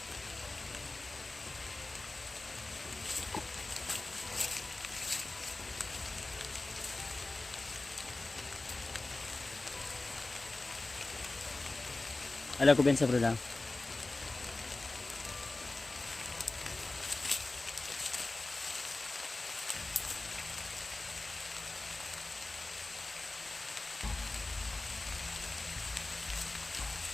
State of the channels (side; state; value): right; quieter; 3.1 dB